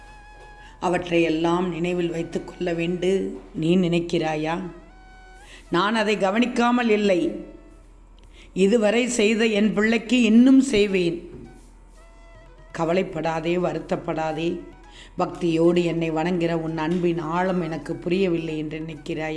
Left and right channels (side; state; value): both; identical; correlation 1.00